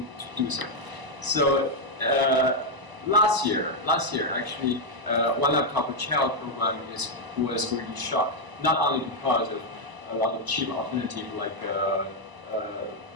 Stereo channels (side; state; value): left; late; 1.0 ms